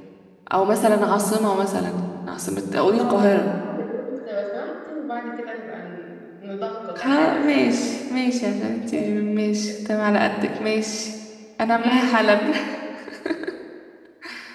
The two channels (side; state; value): both; identical; correlation 1.00